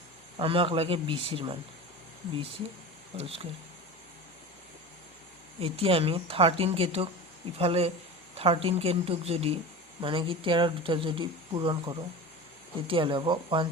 আমাক লাগে বি চিৰ মান, বি চি হোল স্কুৱেৰ। এতিয়া আমি 13kটোক ইফালে 13kটোক যদি মানে কি 13ৰ ভিতৰত যদি পূৰণ কৰোঁ তেতিয়াহ'লে হ'ব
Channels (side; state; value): both; normal; correlation 0.30